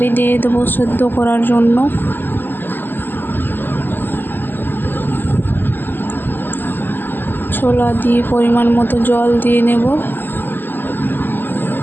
দিয়ে দেবো সেদ্ধ করার জন্য। ছোলা দিয়ে পরিমাণ মতো জল দিয়ে নেব,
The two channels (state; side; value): late; right; 0.092 ms